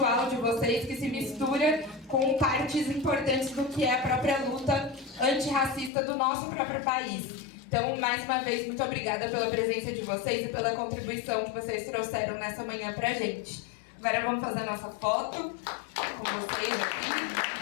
de vocês, que se mistura com partes importantes do que é a própria luta antirracista do nosso próprio país. Então, mais uma vez, muito obrigada pela presença de vocês e pela contribuição que vocês trouxeram nessa manhã pra gente. Agora vamos fazer a nossa foto com vocês aqui.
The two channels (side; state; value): right; drops out; at 5.9 s